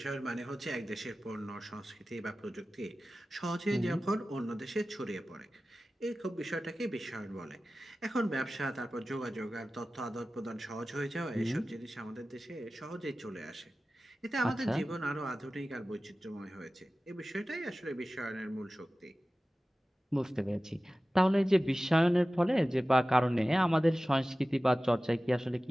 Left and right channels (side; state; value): both; normal; correlation 0.96